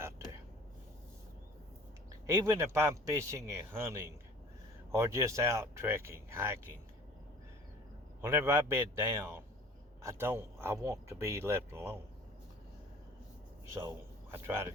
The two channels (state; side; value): normal; both; correlation 0.47